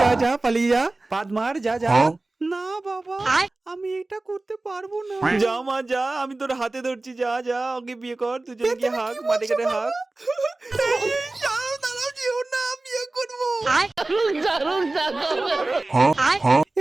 যা যা পালিয়ে যা, পাদ মার, যা যা। না বাবা, আমি এটা করতে পারবো না। যা মা যা, আমি তোর হাতে ধরছি, যা যা ওকে বিয়ে কর, দুজনে গিয়ে হাগ, মাঠে ঘাটে হাগ। দাঁড়াও যেও না, বিয়ে করবো।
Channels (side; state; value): left; quieter; 3.0 dB